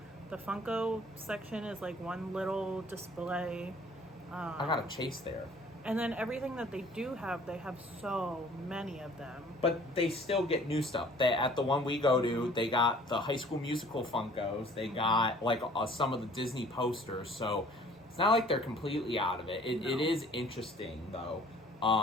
The Funko section is like one little display. I got a Chase there. And then everything that they do have, they have so many of them. But they still get new stuff. At the one we go to, they got the High School Musical Funkos. They got like some of the Disney posters. So it's not like they're completely out of it. It is interesting though.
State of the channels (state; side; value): normal; both; correlation 0.53